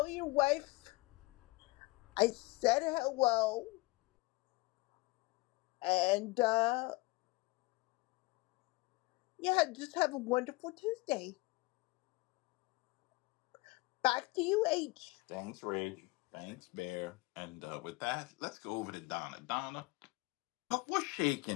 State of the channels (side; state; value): right; quieter; 23.1 dB